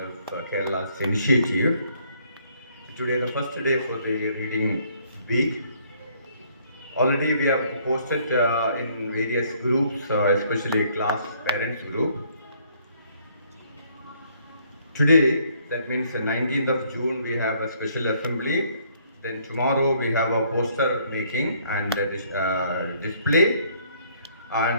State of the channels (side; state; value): both; inverted; correlation -0.65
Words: of Kerala's initiative. Today, the first day for the Reading Week. Already, we have posted in various groups, especially class parents group. Today, that means the 19th of June, we have a special assembly. Then tomorrow we have a poster making and display.